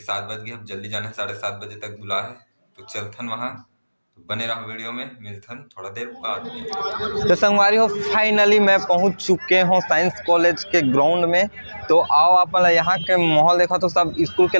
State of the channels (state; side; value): inverted; both; correlation -1.00